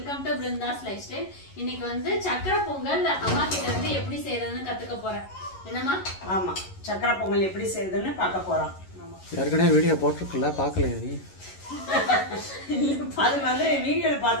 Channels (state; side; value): late; right; 11 ms